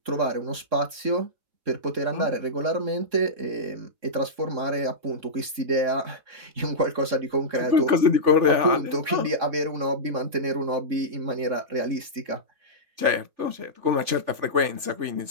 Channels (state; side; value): late; left; 3.6 ms